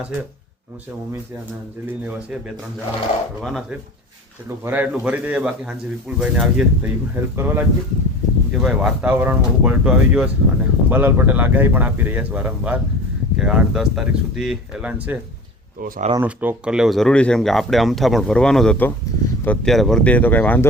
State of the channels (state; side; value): normal; both; correlation 0.37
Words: છે, હું છે, મમ્મી છે અને અંજલિને એવા છે, 2-3 જણા ભરવાના છે. એટલું ભરાય એટલું ભરી દઈએ. બાકી સાંજે વિપુલભાઈને આવીએ તો એ પણ હેલ્પ કરવા લાગીએ કે ભાઈ વાતાવરણમાં બહુ પલટો આવી ગયો છે. અને અંબાલાલ પટેલ આગાહી પણ આપી રહ્યા છે વારંવાર કે 8-10 તારીખ સુધી એલાન છે. તો સારાનો સ્ટોક કરી લેવો જરૂરી છે, કેમ કે આપણે અમથા પણ ભરવાનો જ હતો. તો અત્યારે ભરી દઈએ તો કંઈ